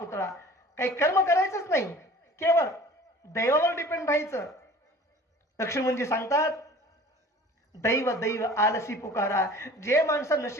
काही कर्म करायचंच नाही, केवळ दैवावर डिपेंड राहायचं. लक्ष्मणजी सांगतात दैव दैव आलसी पुकारा. जे माणसं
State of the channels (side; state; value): both; normal; correlation 0.45